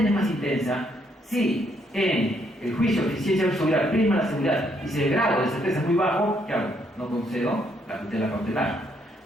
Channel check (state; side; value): normal; both; correlation 0.72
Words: es más intensa, si en el juicio de eficiencia versus seguridad prima la seguridad y si el grado de certeza es muy bajo, ¿qué hago? No concedo la tutela cautelar.